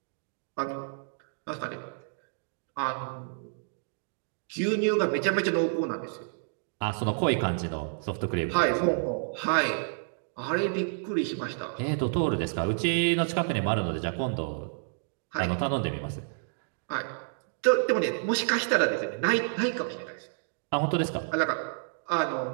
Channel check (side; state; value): left; silent; digital silence